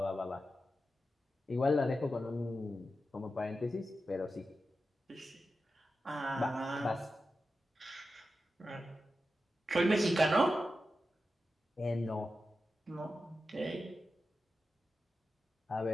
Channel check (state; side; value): normal; both; correlation 0.91